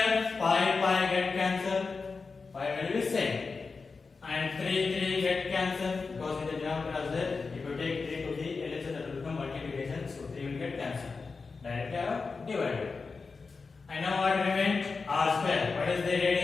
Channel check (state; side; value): quieter; right; 4.5 dB